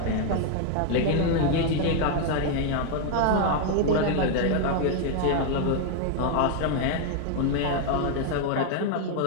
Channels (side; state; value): both; different; correlation 0.00